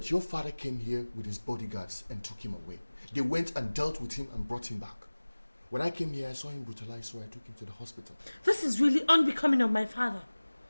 your father came here with his bodyguards and took him away. They went and dealt with him and brought him back. When I came here, I saw him brutalized, so I took him to the hospital. This is really unbecoming of my father.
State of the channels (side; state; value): both; inverted; correlation -1.00